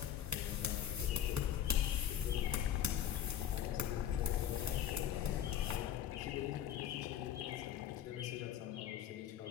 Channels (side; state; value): right; quieter; 10.2 dB